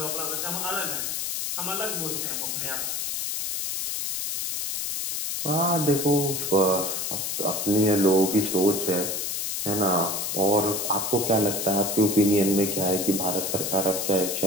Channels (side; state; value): left; noise; hiss, 2 dB below the sound